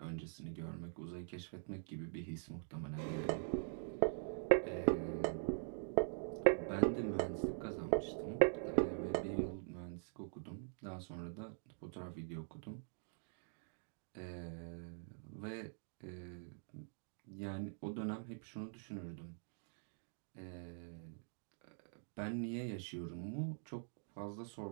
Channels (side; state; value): left; silent; digital silence